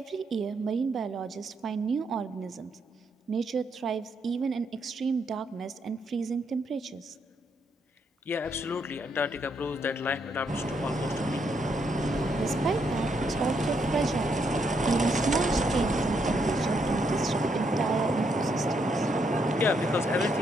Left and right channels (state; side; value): normal; both; correlation 0.76